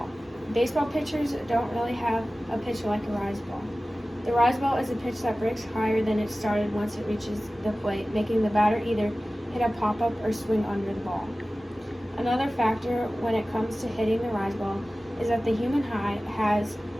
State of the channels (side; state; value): both; normal; correlation 0.96